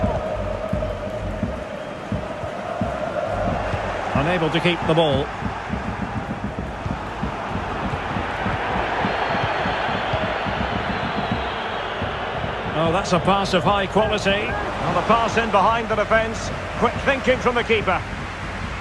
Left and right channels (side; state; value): both; identical; correlation 1.00